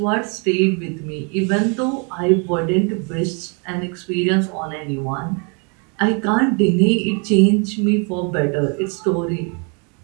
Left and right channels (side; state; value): left; quieter; 35.2 dB